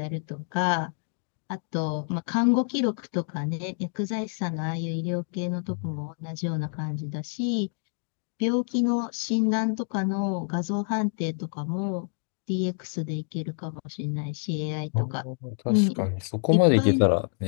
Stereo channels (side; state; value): right; silent; 60 dB below the other